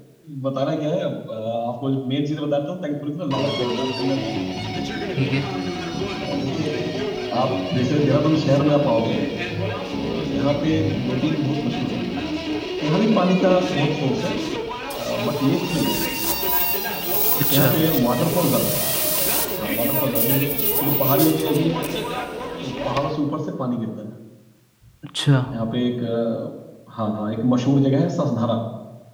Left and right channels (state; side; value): identical; both; correlation 1.00